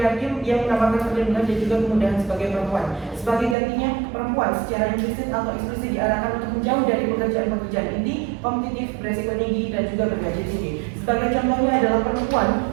yang menawarkan perlindungan dan juga kemudahan sebagai perempuan. Sebagai gantinya, perempuan secara implisit atau eksplisit diarahkan untuk menjauh dari pekerjaan-pekerjaan inti, kompetitif, beresiko tinggi, dan juga bergaji tinggi. Sebagai contohnya adalah perempuan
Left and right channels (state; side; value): drops out; left; at 3.6 s